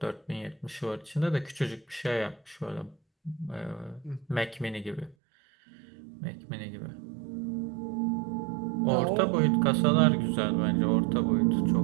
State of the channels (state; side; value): drops out; left; at 5.2 s